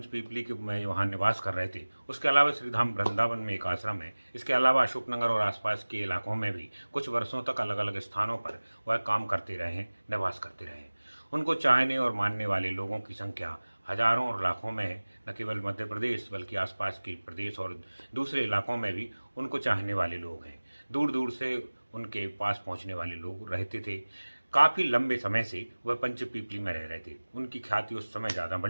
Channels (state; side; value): inverted; both; correlation -1.00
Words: के में वहाँ निवास कर रहे थे। उसके अलावा श्रीधाम वृंदावन में एक आश्रम है। इसके अलावा अशोकनगर और आसपास के इलाकों में भी कुछ वर्षों तक अलग अलग स्थानों पर वह काम करते रहे हैं, निवास करते रहे हैं। उनको चाहने और मानने वाले लोगों की संख्या हजारों और लाखों में है। न केवल मध्य प्रदेश बल्कि आसपास के प्रदेश और दूसरे इलाकों में भी उनको चाहने वाले लोग हैं। दूर दूर से उनके पास पहुँचने वाले लोग रहते थे। काफ़ी लंबे समय से वह पंचपीपली में रह रहे थे। उनकी ख्याति उस समय ज़्यादा